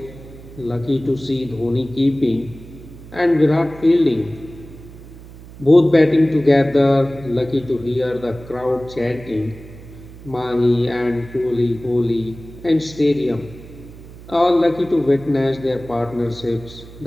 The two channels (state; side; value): noise; right; hum, 17 dB below the sound